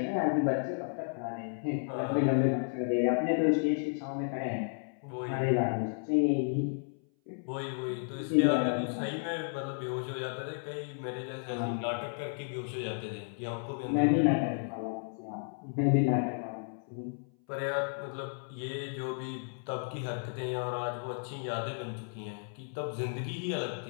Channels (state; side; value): silent; right; 56 dB below the other